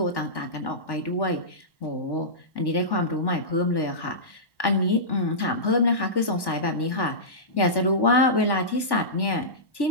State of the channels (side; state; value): right; late; 1.1 ms